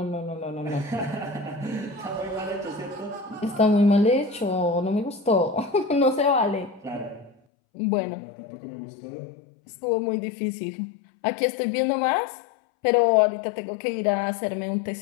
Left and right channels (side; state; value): right; drops out; at 7.4 s